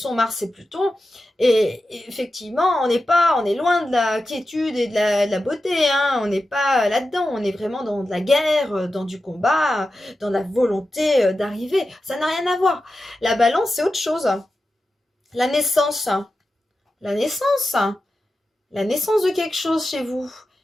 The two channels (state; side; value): normal; both; correlation 0.92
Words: Mars et Pluton. Et effectivement, on est loin de la quiétude et de la beauté. Hein. On n'est pas là-dedans. On est vraiment dans de la guerre, dans du combat, dans la volonté d'arriver. Ça n'a rien à voir. La balance, c'est autre chose. La naissance. La naissance. La naissance de quelque chose chez vous.